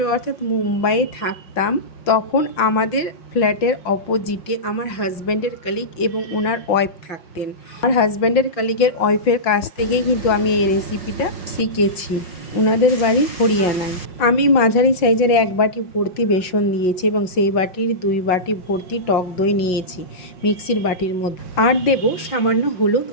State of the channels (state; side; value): late; right; 5.6 ms